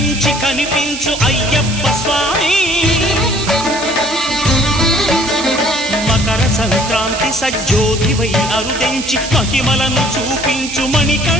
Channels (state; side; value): noise; right; hiss, 9 dB below the sound